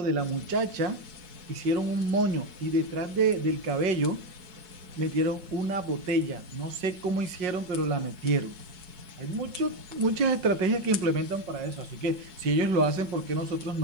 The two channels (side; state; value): left; late; 5.5 ms